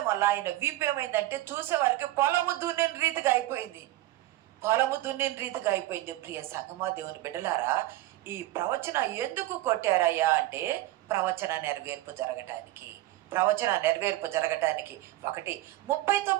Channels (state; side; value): quieter; left; 16.4 dB